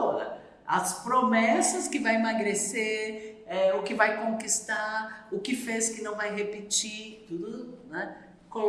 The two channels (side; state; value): both; identical; correlation 1.00